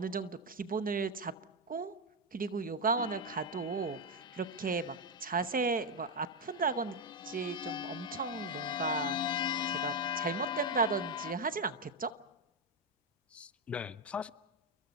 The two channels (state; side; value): normal; both; correlation 0.06